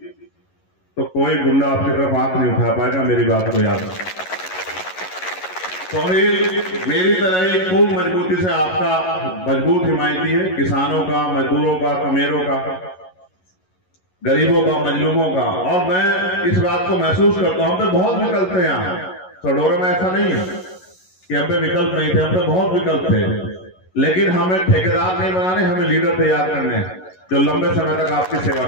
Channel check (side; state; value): right; late; 11 ms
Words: तो कोई गुंडा आपकी तरफ आंख नहीं उठा पाएगा। मेरी बात को याद रखना। सोहेल मेरी तरह ही खूब मजबूती से आपका मजबूत हिमायती है, किसानों का, मजदूरों का, कमेरों का, गरीबों का, मजलूमों का। और मैं इस बात को महसूस करता हूं, हम पे बहुत विकल्प थे यहाँ सडोरा में, ऐसा नहीं है कि हम पे विकल्प नहीं थे, हम पे बहुत विकल्प थे, लेकिन हमें ठेकेदार नहीं बनाने, हमें लीडर तैयार करने हैं जो लंबे समय तक आपकी सेवा